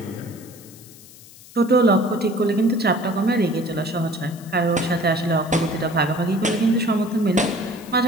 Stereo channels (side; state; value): left; noise; hiss, 21 dB below the sound